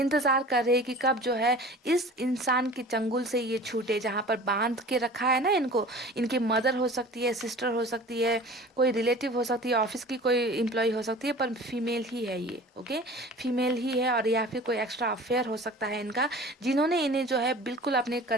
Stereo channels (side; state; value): both; normal; correlation 0.41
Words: कर रहे कि कब जो है इस इंसान के चंगुल से ये छूटे, जहाँ पर बांध के रखा है ना इनको। इनकी मदर हो सकती है, सिस्टर हो सकती है, कोई रिलेटिव हो सकती है, ऑफिस की कोई एम्प्लॉय हो सकती है, पर फीमेल ही है ये, ओके, फीमेल ही है। और या फिर कोई एक्स्ट्रा अफेयर हो सकता है इनका, जिन्होंने इन्हें जो है बिल्कुल अपने